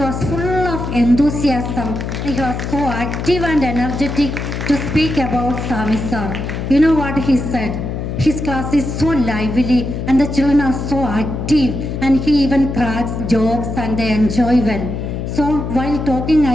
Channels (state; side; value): noise; left; hum, 4 dB below the sound